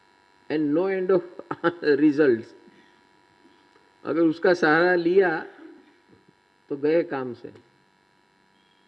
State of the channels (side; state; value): both; identical; correlation 1.00